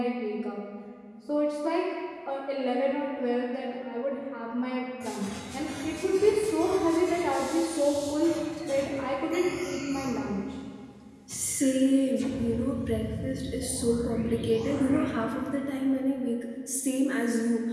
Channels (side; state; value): both; identical; correlation 1.00